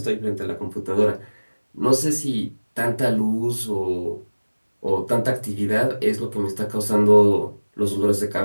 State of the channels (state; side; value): inverted; both; correlation -1.00